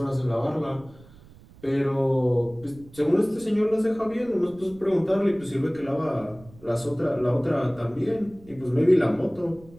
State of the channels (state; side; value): noise; right; rumble, 23 dB below the sound